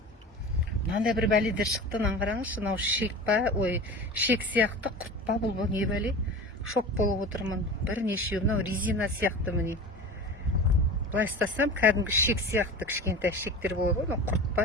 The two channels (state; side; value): normal; both; correlation 0.33